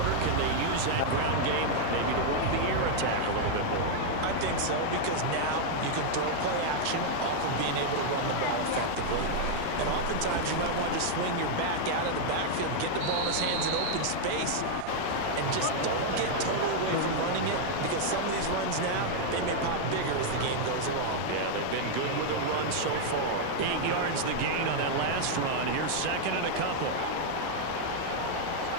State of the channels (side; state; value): both; different; correlation -0.01